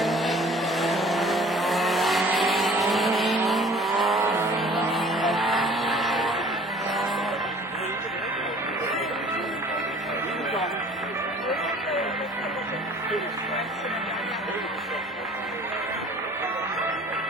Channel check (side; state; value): both; normal; correlation 0.50